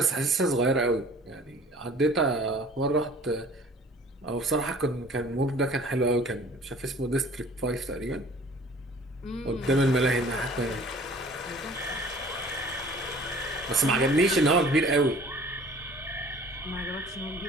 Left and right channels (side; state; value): both; normal; correlation 0.49